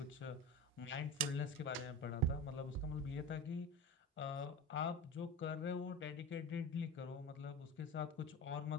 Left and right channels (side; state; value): both; normal; correlation 0.28